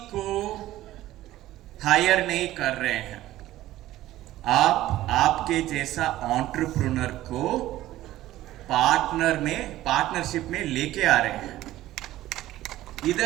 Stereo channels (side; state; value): left; quieter; 15.1 dB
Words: को हायर नहीं कर रहे हैं, आप आपके जैसा एंटरप्रेन्योर को पार्टनरशिप में लेके आ रहे हैं।